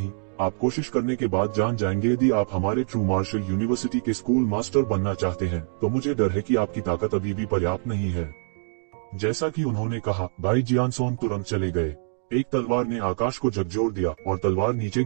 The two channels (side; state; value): left; silent; 62 dB below the other